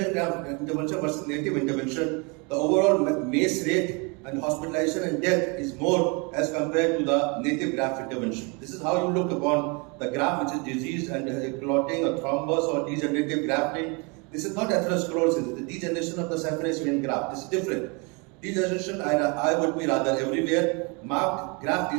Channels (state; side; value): quieter; left; 31.3 dB